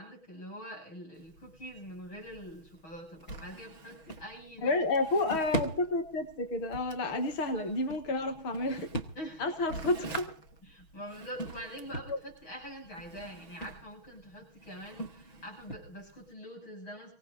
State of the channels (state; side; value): late; right; 6.3 ms